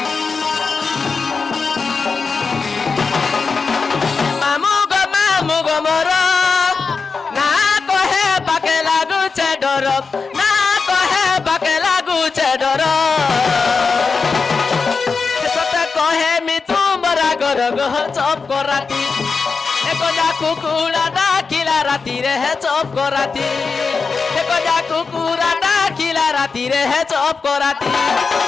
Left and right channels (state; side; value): quieter; right; 4.8 dB